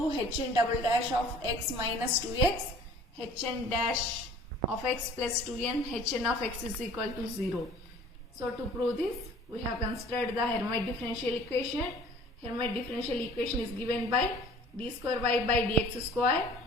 Hn double dash of x minus 2x, Hn dash of x plus 2n, Hn of x is equal to 0. So to prove this, we have considered the Hermite differential equation. Hermite differential equation is given by d square y by dx square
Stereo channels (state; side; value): normal; both; correlation 0.49